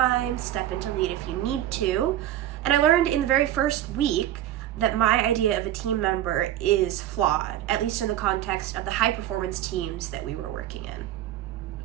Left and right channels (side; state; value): left; quieter; 12.6 dB